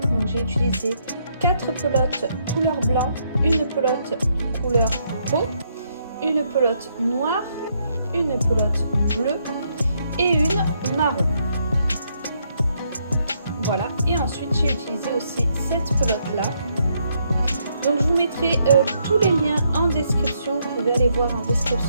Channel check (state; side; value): inverted; both; correlation -0.75